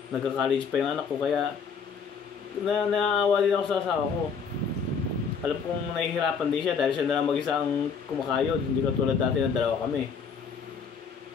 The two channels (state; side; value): quieter; right; 6.0 dB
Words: nagka-college pa yung anak ko, kaya naaawa din ako sa asawa ko. Alam kong nahihirapan din siya dahil siya na lang mag-isa ang kumakayod. Hindi katulad dati na dalawa kami.